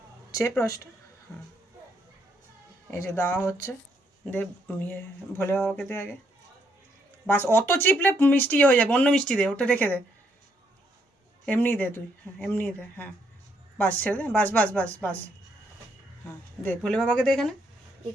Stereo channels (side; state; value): both; normal; correlation 0.73